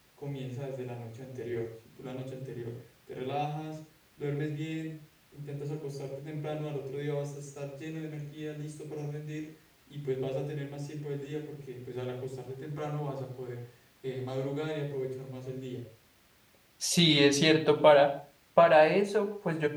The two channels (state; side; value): identical; both; correlation 1.00